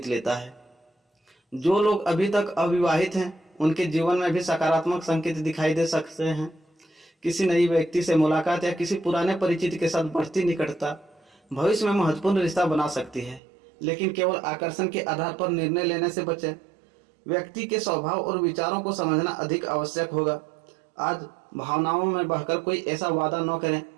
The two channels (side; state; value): left; drops out; at 13.4 s